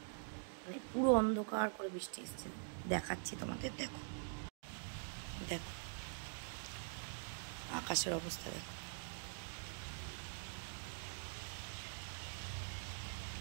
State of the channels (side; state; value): left; silent; digital silence